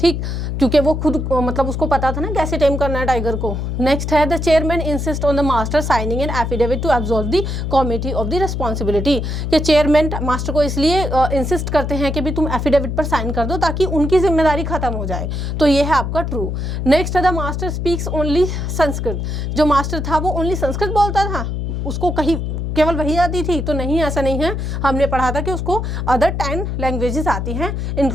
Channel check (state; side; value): noise; left; hum, 3 dB below the sound